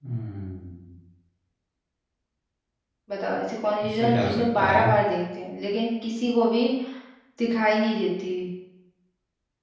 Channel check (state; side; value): identical; both; correlation 1.00